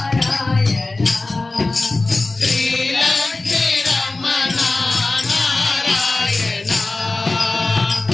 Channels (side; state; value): right; quieter; 3.2 dB